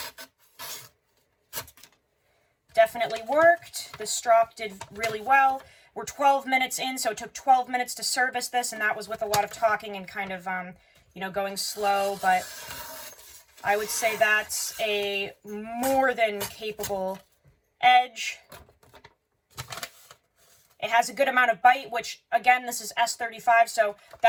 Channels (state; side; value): identical; both; correlation 1.00